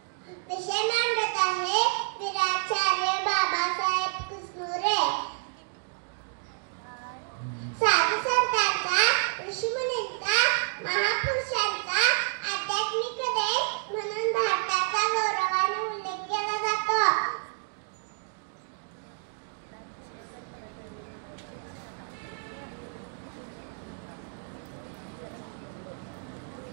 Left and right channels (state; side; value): silent; left; digital silence